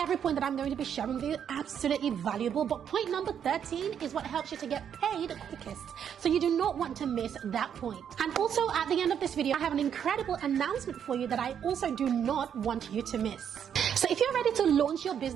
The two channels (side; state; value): left; quieter; 8.5 dB